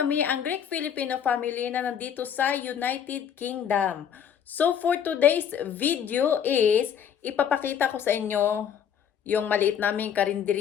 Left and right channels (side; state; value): right; quieter; 8.5 dB